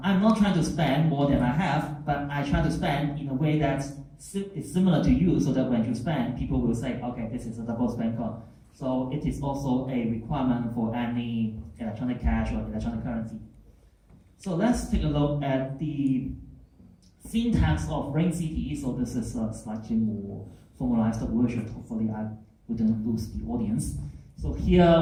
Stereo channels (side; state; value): both; identical; correlation 1.00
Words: not trying to spend more than I have, but I try to spend in a way that is similar to you so that when you spend, people will say, okay, this is a double spend coin. So it is also a requirement for any electronic cash or electronic currency. So let's take a look at the syntax of RingCT. So this is a slightly more formalized version. Hopefully I wouldn't lose the audience. So